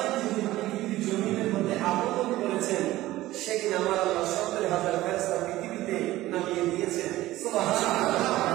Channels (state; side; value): quieter; left; 16.4 dB